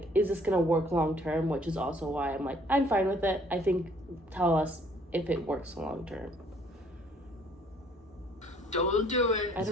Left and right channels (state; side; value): normal; both; correlation 0.60